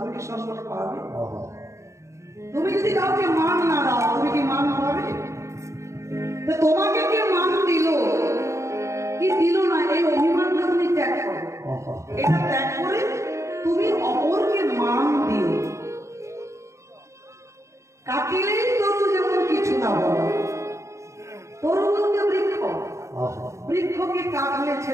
কি সম্মান পাবে? তুমি যদি কাউকে মান না দাও তুমি কি মান পাবে? তো তোমাকে কে মান দিল কি দিল না এই অভিমানটা তুমি ত্যাগ করো। এটা ত্যাগ করে তুমি অপরকে মান দিও। কাটিলেই তরু যেমন কিছু না বলো, তরু বলতে বৃক্ষ, বৃক্ষকে কাটলে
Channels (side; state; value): left; late; 0.14 ms